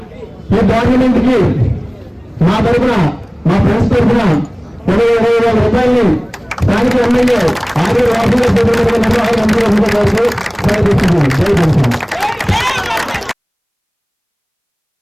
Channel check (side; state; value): both; identical; correlation 1.00